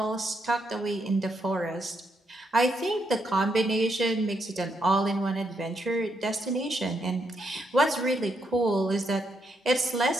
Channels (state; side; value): normal; both; correlation 0.78